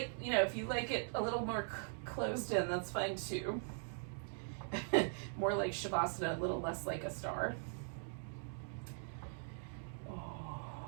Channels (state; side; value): silent; left; digital silence